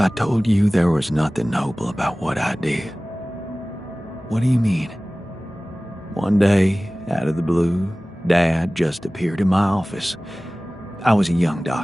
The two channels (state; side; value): normal; both; correlation 0.98